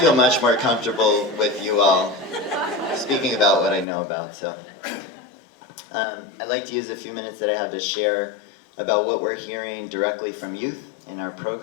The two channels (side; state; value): right; drops out; at 3.9 s